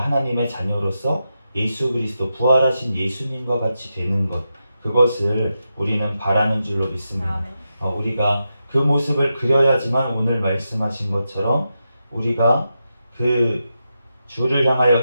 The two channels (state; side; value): inverted; both; correlation -0.88